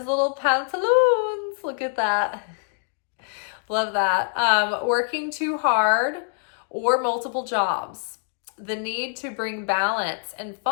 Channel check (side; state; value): right; silent; 62 dB below the other